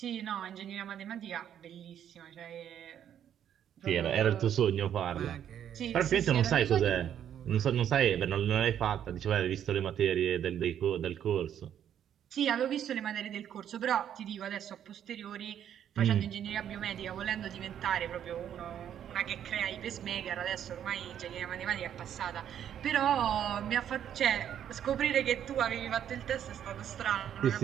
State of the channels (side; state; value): left; quieter; 9.8 dB